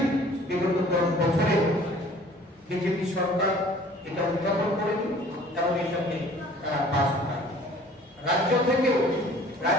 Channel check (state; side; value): normal; both; correlation 0.51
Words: বিগত 10 বছরে বিজেপি সরকার এটা উত্থাপন করেনি এবং এটাকে পাস করায়। রাজ্য থেকেও